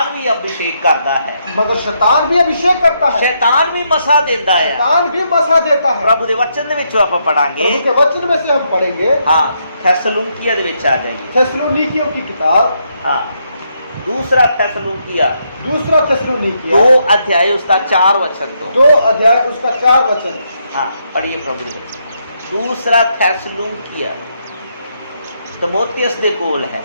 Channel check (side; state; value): both; inverted; correlation -0.77